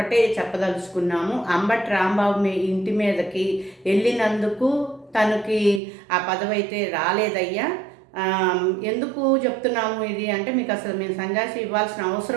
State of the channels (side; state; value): left; drops out; at 5.8 s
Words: చెప్పదలుచుకున్నాము. అంబటి రాంబాబు ఇంటి మీదకి వెళ్ళినందుకు తనకి ఆ పదవి అయితే రాలేదయ్యా. ఎందుకు చెప్తున్నాము ఇది అంటే, మీకు అసలు మేము సంజాషి ఇవ్వాల్సిన